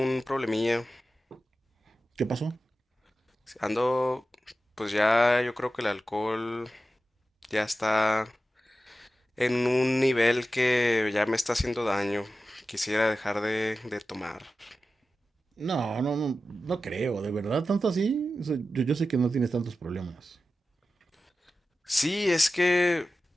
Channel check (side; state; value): both; normal; correlation 0.93